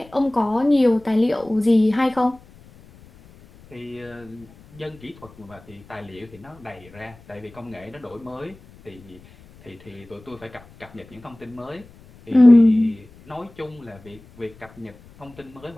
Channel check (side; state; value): left; noise; rumble, 24 dB below the sound